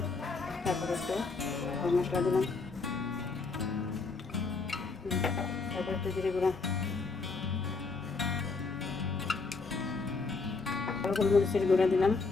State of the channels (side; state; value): right; quieter; 4.2 dB